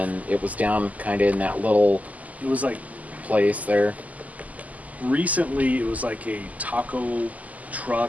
it was down kind of in that little It was like place there. recently. It was like a taco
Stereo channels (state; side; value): late; left; 0.076 ms